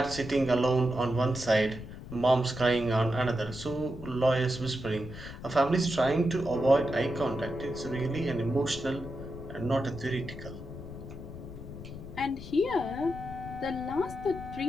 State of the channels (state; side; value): noise; left; rumble, 12 dB below the sound